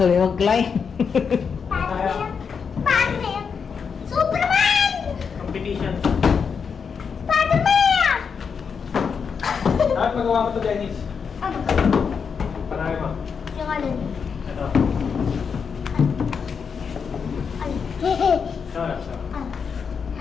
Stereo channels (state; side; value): quieter; right; 6.2 dB